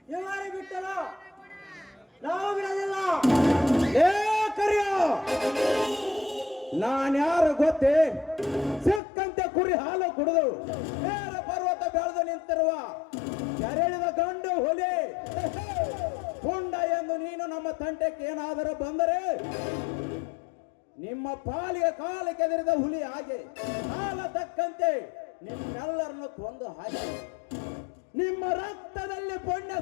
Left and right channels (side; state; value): right; drops out; at 9.0 s